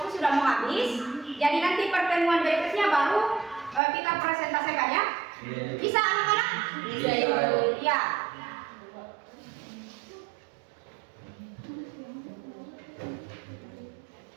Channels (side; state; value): left; drops out; at 3.8 s